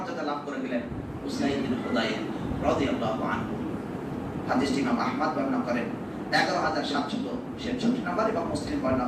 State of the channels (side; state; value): both; identical; correlation 1.00